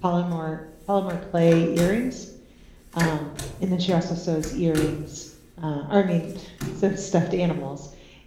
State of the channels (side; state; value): both; identical; correlation 1.00